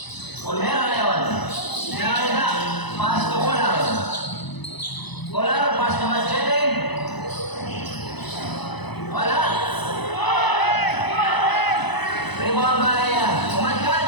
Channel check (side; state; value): right; late; 1.0 ms